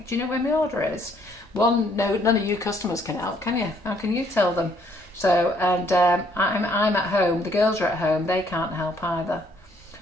do you know when my order is? No, none of you customers can help, can you? How can you tell them? So, and I'm at home, the girls are at home, they can't help either.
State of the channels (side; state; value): both; normal; correlation 0.66